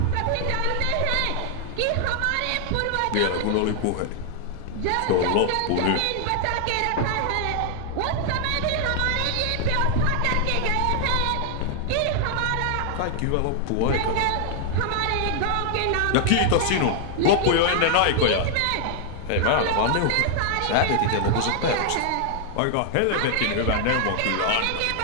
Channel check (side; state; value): both; different; correlation 0.00